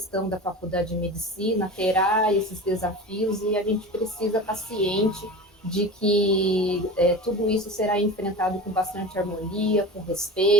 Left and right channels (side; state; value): both; normal; correlation 0.32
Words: da Faculdade de Medicina terá esses desafios e a gente precisa estar ciente de que tudo isso será enfrentado com bastante harmonia, com